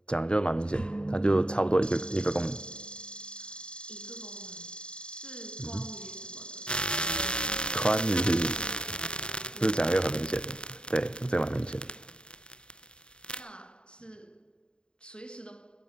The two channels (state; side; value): late; right; 0.050 ms